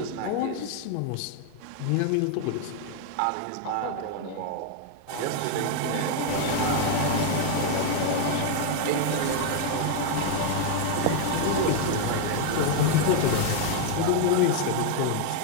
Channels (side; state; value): both; different; correlation 0.00